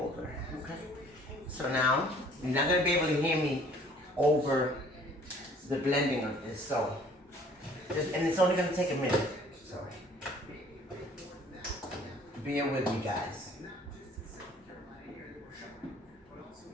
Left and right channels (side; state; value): both; normal; correlation 0.55